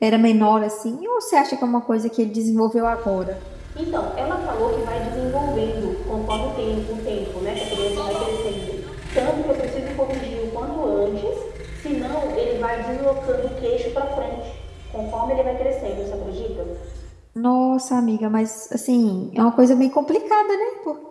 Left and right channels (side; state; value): both; identical; correlation 1.00